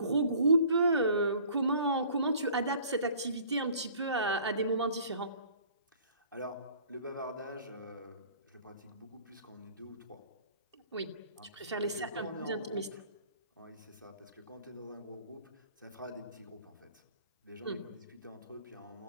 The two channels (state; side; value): inverted; both; correlation -0.51